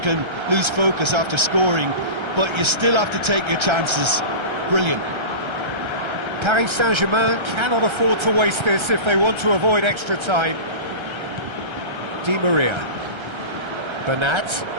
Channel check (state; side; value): late; left; 1.3 ms